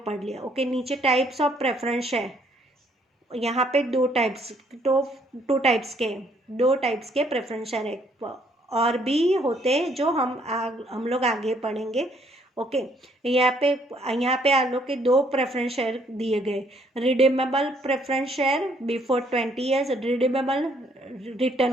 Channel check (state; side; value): normal; both; correlation 0.66